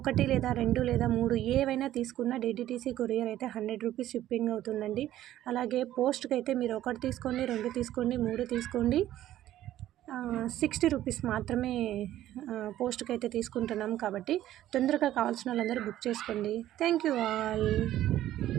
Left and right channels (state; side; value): quieter; left; 13.3 dB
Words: 1 లేదా 2 లేదా 3 ఏవైనా తీసుకున్న డిడిటీసీ కొరియర్ అయితే 100 రూపీస్ షిప్పింగ్ అవుతుందండి. అలాగే పోస్ట్కి అయితే మీరు 1 తీసుకోండి, 2 తీసుకోండి, 3 తీసుకోండి, 60 రూపీస్ మాత్రమే పోస్ట్కి అయితే తీసుకుంటున్నాం. కాబట్టి తొందరగా కావాల్సిన వాళ్ళందరూ బుక్ చేసుకోండి. Thank you all.